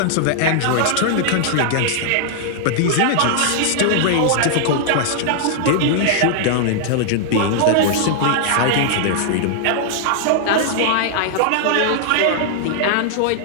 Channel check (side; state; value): both; different; correlation -0.01